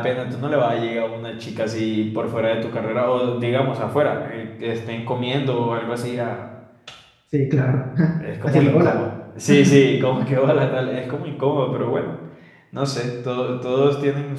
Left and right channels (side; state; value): both; identical; correlation 1.00